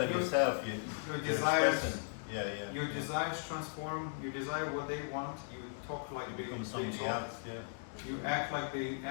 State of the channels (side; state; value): right; silent; digital silence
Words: of yourself, your you're desires. expressing. Yeah. Your desires transform. You desire what they want. You talk like they become somebody talk. else. Yeah. You act like they